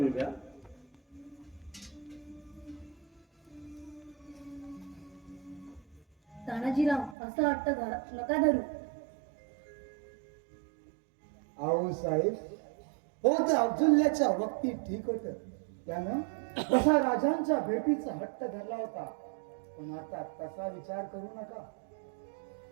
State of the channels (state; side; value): drops out; left; at 7.2 s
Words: घ्या. तानाजीराव असं वाटतं नका धरू. आऊ साहेब हो तर अब्दुल्ल्याच्या वक्ती ठीक होत. त्यानं तसा राजांच्या भेटीचा हट्ट धरला होता, पण आता तसा विचार करू नका.